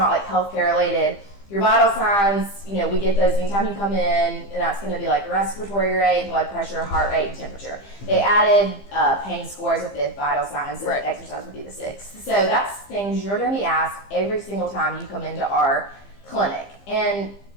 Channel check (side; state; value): right; late; 15 ms